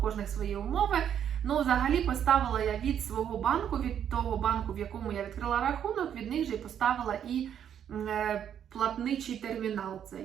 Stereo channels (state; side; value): quieter; left; 9.1 dB